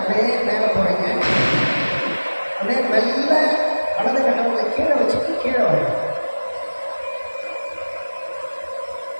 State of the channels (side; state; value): both; inverted; correlation -1.00